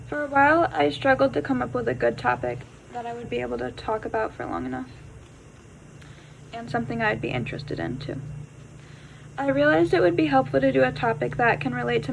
For a while, I struggled to come up with a good topic that I would be able to talk about for long enough, and something I'd be interested in too. I realized it would be helpful to do a topic that can relate to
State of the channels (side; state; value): both; identical; correlation 1.00